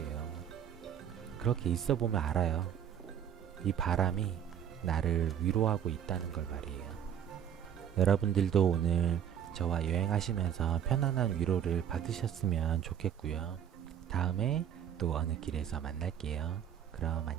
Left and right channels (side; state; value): left; quieter; 9.2 dB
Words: 그렇게 있어 보면 알아요. 이 바람이 나를 위로하고 있다는 걸 말이에요. 여러분들도 오늘 저와 여행하시면서 편안한 위로를 받으셨으면 좋겠고요. 다음에 또 어느 길에서 만날게요. 그럼